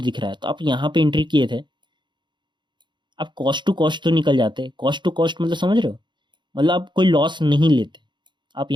दिख रहा है, तो आप यहाँ पे एंट्री किए थे, आप कॉस्ट टू कॉस्ट तो निकल जाते। कॉस्ट टू कॉस्ट मतलब समझ रहे हो, मतलब आप कोई लॉस नहीं लेते, आप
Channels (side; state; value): left; late; 0.22 ms